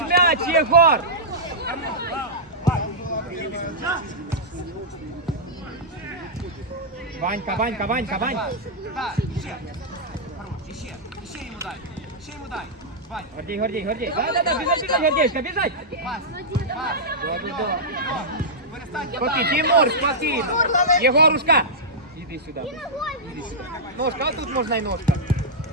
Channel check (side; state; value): both; normal; correlation -0.11